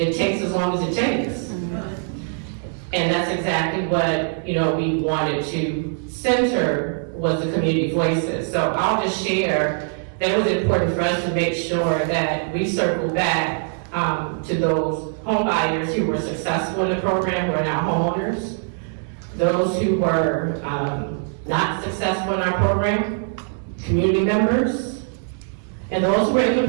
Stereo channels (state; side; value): silent; left; 56 dB below the other